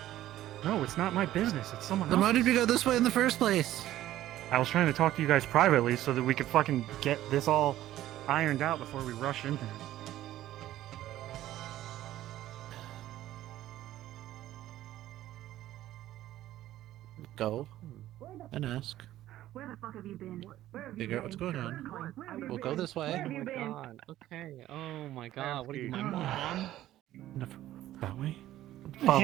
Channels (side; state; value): left; quieter; 13.9 dB